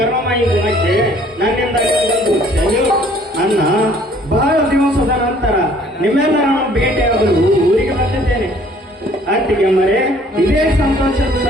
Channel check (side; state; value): both; normal; correlation 0.58